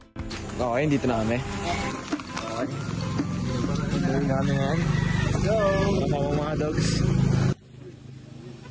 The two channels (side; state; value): both; identical; correlation 1.00